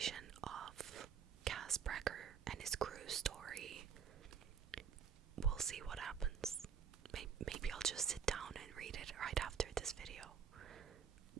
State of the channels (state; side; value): quieter; left; 7.2 dB